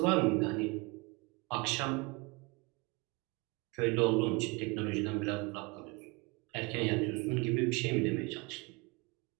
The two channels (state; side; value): quieter; left; 27.0 dB